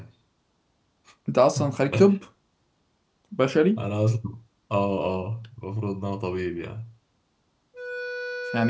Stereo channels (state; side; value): identical; both; correlation 1.00